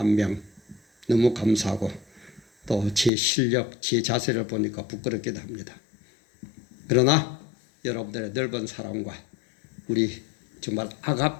너무 감사하고 또 제 실력, 제 자세를 보니까 부끄럽기도 합니다. 그러나 여러분들의 넓은 사랑과 우리 정말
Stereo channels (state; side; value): drops out; right; at 3.1 s